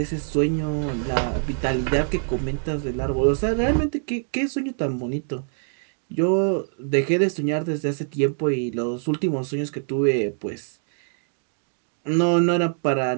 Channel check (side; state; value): left; silent; digital silence